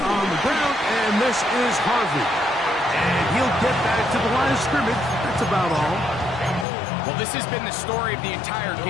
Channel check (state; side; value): drops out; right; at 6.7 s